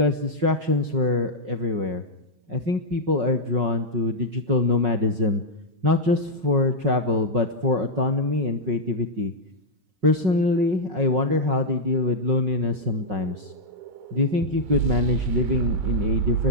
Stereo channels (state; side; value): late; left; 5.4 ms